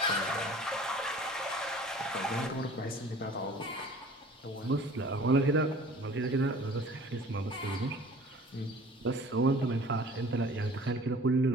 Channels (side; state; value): both; normal; correlation 0.47